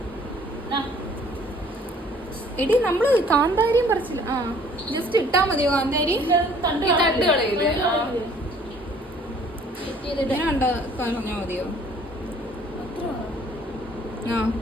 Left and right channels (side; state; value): both; normal; correlation 0.56